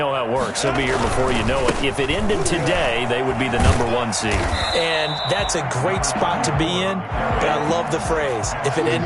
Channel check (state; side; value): identical; both; correlation 1.00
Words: how it works. They'll be here before you know it. If it ended today, they would be the #1 seed. And that's a great spot to be in, but I love the phrase, if it